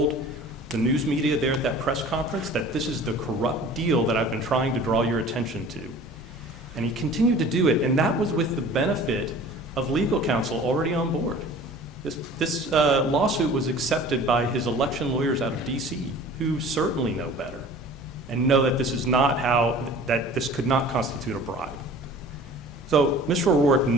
the news media there at that press conference that this is the corrupt deal that I've been trying to draw your attention to. And he continued to do it, and that was with the benefit of legal counsel already on board. This lawsuit was accepted by his election lawyers out of D.C., who certainly know better and know that this is not that this could not constitute a bribe. So Mr. O'Rourke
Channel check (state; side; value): normal; both; correlation 0.44